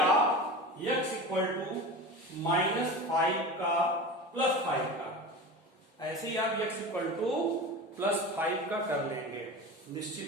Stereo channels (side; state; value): both; normal; correlation 0.30